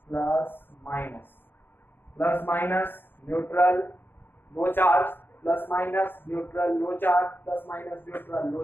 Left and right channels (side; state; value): right; late; 0.10 ms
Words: plus minus, plus minus neutral, no charge, plus minus neutral, no charge, plus minus neutral, no